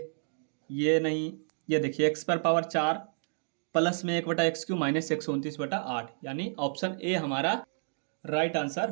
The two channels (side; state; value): left; silent; digital silence